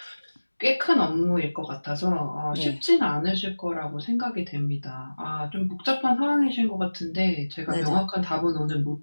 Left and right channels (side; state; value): both; inverted; correlation -1.00